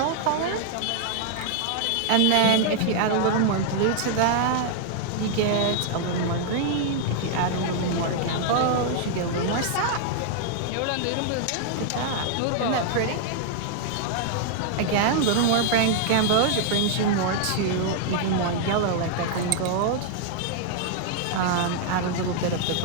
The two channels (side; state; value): both; different; correlation 0.00